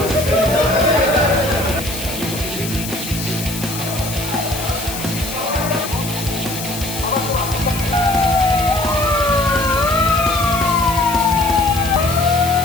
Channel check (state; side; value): noise; left; hiss, 9 dB below the sound